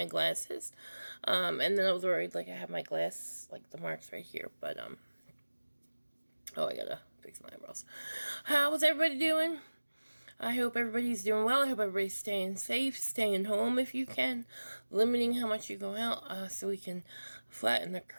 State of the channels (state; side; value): inverted; both; correlation -1.00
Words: glasses. And then I was worried like I have my glass, like the marks right here, but oh, I gotta fix my eyebrows. How's everybody doing? I hope everybody's doing well. I hope everybody's staying safe, staying home if you can, limiting how much you go out, so we can flatten the